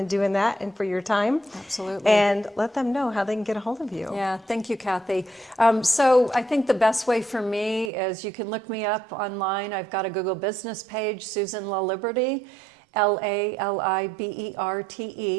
doing that and for your time. Absolutely. And let them know how they can get a hold of you. Yeah, thank you, Kathy. So I think the best way for me is you can look me up online. I've got a Google business page, Susan LaLiberte, LaLiberte.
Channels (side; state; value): left; drops out; at 7.9 s